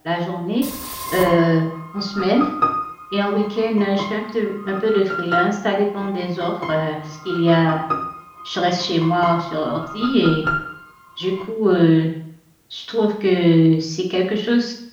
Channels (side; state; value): both; identical; correlation 1.00